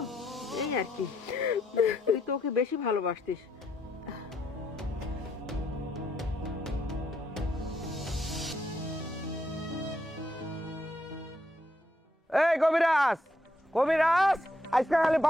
এই আর কি। তুই তো ওকে বেশি ভালোবাসতিস। এই কবিরাজ, কবিরাজ, আজকে খালি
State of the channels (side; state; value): both; normal; correlation 0.76